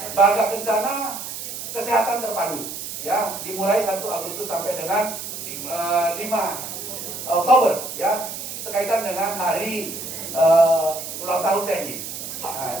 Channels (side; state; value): right; noise; hiss, 8 dB below the sound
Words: Bangga Kencana Kesehatan Terpadu ya, dimulai 1 Agustus sampai dengan 5 Oktober ya, sekaitan dengan hari ulang tahun TNI.